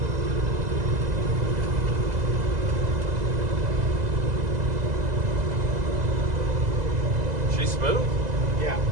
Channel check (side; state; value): left; late; 2.0 ms